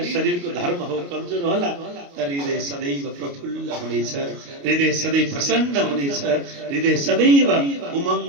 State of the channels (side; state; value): left; late; 29 ms